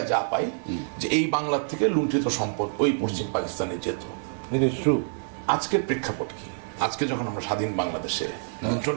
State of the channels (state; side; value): silent; left; 60 dB below the other